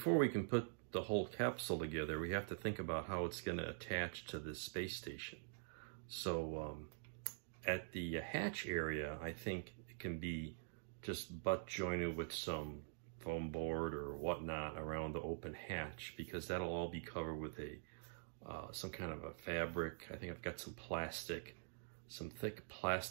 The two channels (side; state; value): left; silent; digital silence